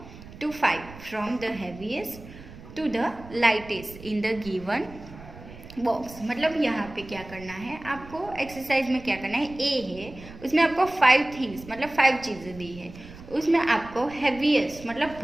to 5 from the heaviest to the lightest in the given box. मतलब यहाँ पे क्या करना है आपको, एक्सरसाइज में क्या करना है, ए है उसमें आपको 5 थिंग्स मतलब 5 चीज़ें दी है। उसमें आपको हैवीएस्ट मतलब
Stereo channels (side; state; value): right; noise; rumble, 17 dB below the sound